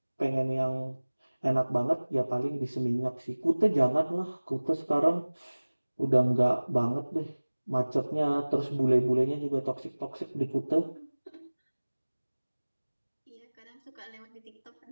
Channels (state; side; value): inverted; both; correlation -1.00